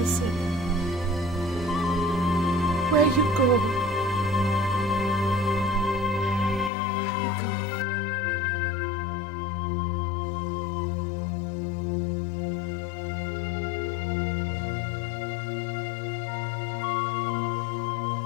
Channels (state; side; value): drops out; right; at 6.7 s